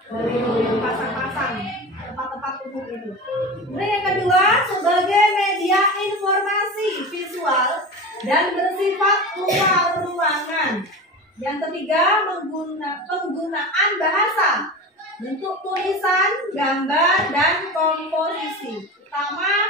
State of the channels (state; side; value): normal; both; correlation 0.29